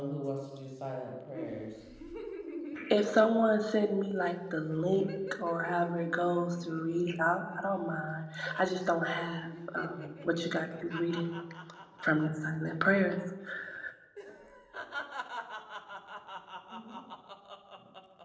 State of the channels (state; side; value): identical; both; correlation 1.00